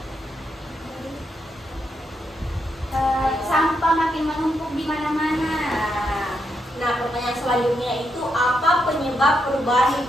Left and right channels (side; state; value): both; normal; correlation 0.81